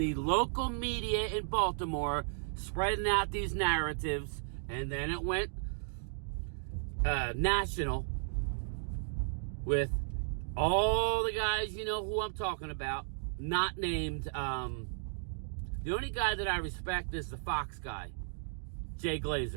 local media in Baltimore spreading out these narratives, and then it went national with all the guys, you know who I'm talking about, not named. The only guy that I respect is the Fox guy, Jay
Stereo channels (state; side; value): silent; left; digital silence